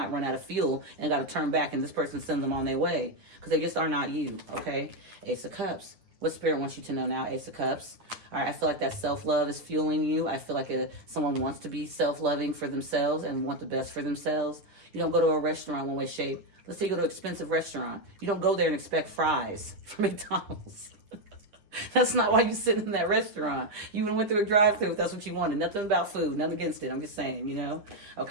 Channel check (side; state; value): left; late; 9.8 ms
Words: run out of fuel and got to turn back, and this person sends them on their way because they just are not you, okay? Ace of Cups. What Spirit wants you to know now? Ace of Cups. All right, I feel like that self-love is fueling you. I feel like someone wants to be self-loving for themselves and want the best for themselves. You don't go to a restaurant one way shape. Let's say you go to an expensive restaurant. You don't go there and expect fries from McDonald's. That's not why you sit in that restaurant. You went through a drive-thru if that's what you wanted. Nothing about food, nothing against it. I'm just saying,